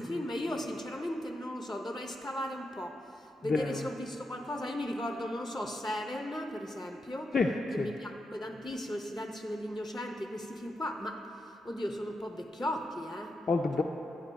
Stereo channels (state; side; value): normal; both; correlation 0.86